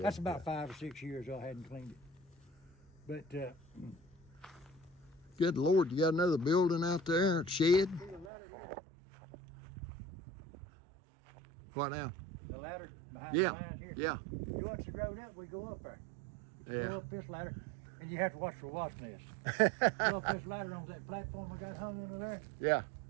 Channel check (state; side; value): drops out; left; at 8.3 s